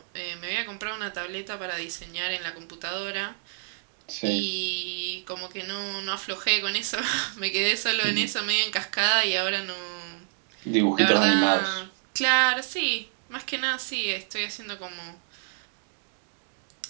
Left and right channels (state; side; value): silent; left; digital silence